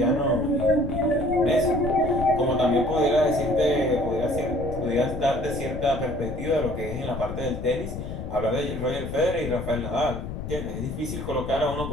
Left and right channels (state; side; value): noise; left; rumble, 7 dB below the sound